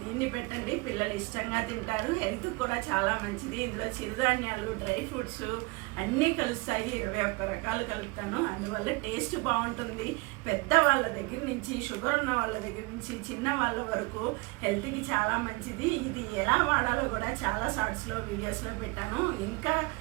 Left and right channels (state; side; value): quieter; left; 25.3 dB